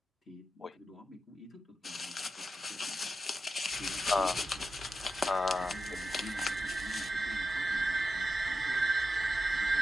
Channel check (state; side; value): normal; both; correlation 0.90